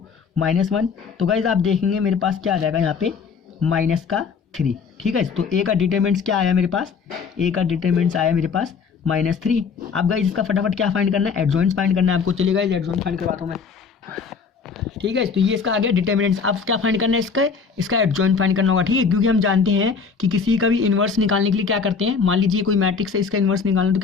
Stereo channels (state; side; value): quieter; right; 5.6 dB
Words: -1। तो गाइस आप देखेंगे मेरे पास क्या आ जाएगा यहाँ पे -3 -3। ठीक है, तो ए का डिटरमिनेंट्स क्या आया मेरे पास, ए का डिटरमिनेंट्स आया मेरे पास -3। अब गाइस इसका फटाफट क्या फाइंड करना है, एडजॉइंट्स फाइंड करना है आपको। चलिए गाइस एडजॉइंट फाइंड करवाता हूँ मैं। ठीक है, तो ये इसका आ गया डिटरमिनेंट्स। अब क्या फाइंड करना है, इसका एडजॉइंट फाइंड करना होगा। ठीक है, क्योंकि हम जानते हैं कि किसी का भी इन्वर्स निकालने के लिए क्या करते हैं, मान लीजिए कोई मैट्रिक्स है, इसका इन्वर्स निकालना तो